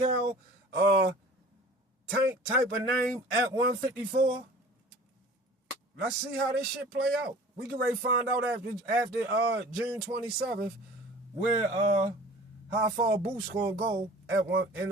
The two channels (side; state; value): both; normal; correlation 0.44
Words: tank type of name at 154? Let's see how this shit play out. We can ready find out after June 27th where how far Boots gonna go in